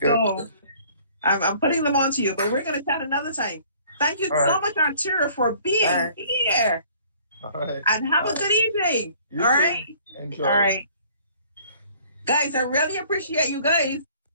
So I'm putting them onto you, but we're going to chat another time. Thank you so much, Arturo, for being here. All right. And have a good evening. You all too. right. Enjoy. All right. Guys, I really appreciate you guys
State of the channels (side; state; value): both; inverted; correlation -0.55